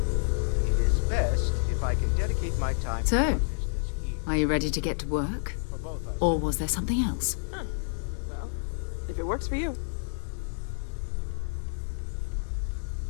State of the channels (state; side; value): silent; right; digital silence